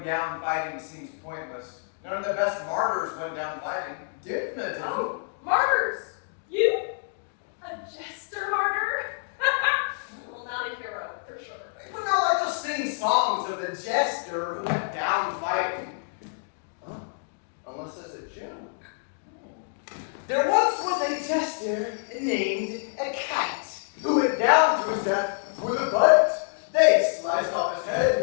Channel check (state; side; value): silent; right; digital silence